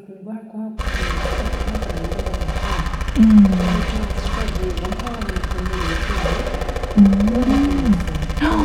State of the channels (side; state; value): both; identical; correlation 1.00